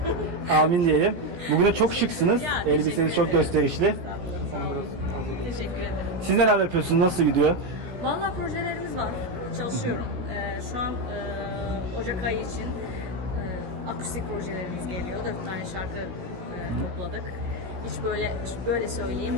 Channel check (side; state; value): left; late; 16 ms